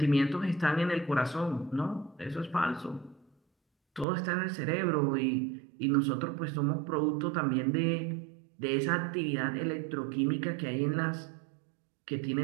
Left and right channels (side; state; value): left; drops out; at 4.0 s